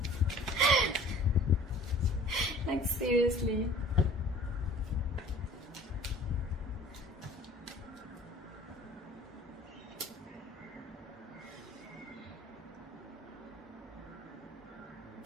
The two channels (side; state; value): both; normal; correlation 0.48